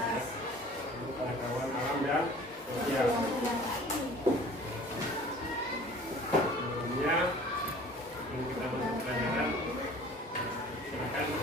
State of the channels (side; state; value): both; normal; correlation 0.47